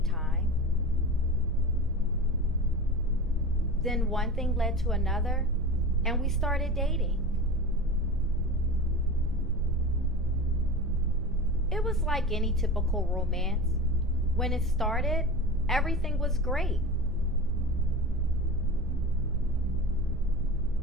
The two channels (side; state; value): right; noise; rumble, 9 dB below the sound